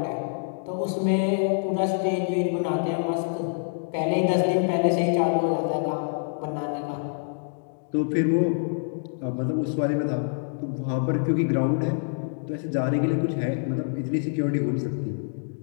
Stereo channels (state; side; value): silent; right; digital silence